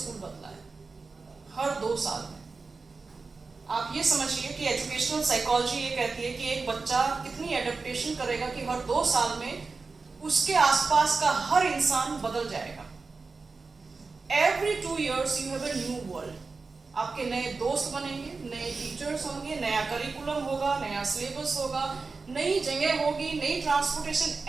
बदला है, हर 2 साल में। आप ये समझिए कि एजुकेशनल साइकोलॉजी ये कहती है कि एक बच्चा कितनी एडेप्टेशन करेगा कि हर 2 साल में उसके आसपास का हर इंसान बदल जाएगा। Every 2 years you have a new world. आपके नए दोस्त बनेंगे, नए टीचर्स होंगे, नया करिकुलम होगा, नया सिलेबस होगा, नई जगह होगी, नई transportation,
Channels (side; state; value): left; quieter; 4.2 dB